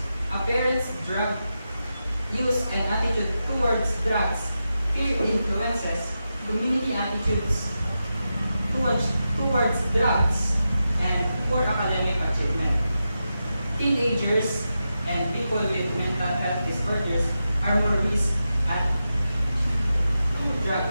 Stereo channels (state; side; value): inverted; both; correlation -0.89